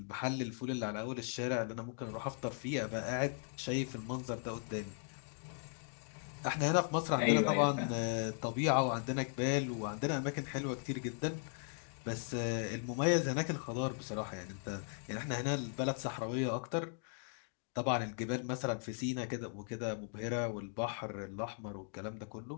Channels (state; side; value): silent; right; 52 dB below the other